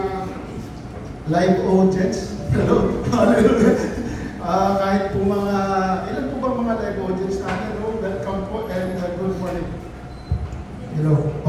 live audience. Hello. Hallelujah. Kahit po ilan po ba mga live audience natin? Hello, welcome po and good morning. Hello.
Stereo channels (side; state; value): both; identical; correlation 1.00